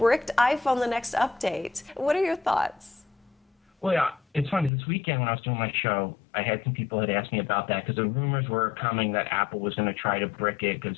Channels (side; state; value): right; drops out; at 4.7 s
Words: iPhone the next update. What are your thoughts? Well, yeah, it's funny. This weekend when I was doing my show, I had some people had asked me about that because the rumors were coming that Apple was going to try to brick it because